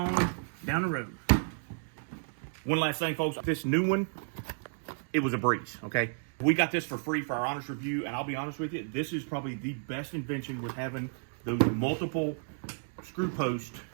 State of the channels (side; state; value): left; silent; digital silence